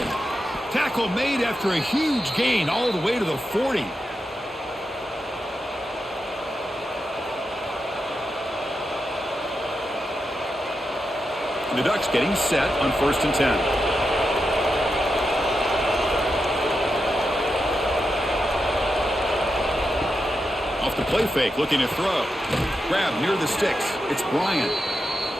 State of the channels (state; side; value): normal; both; correlation 0.87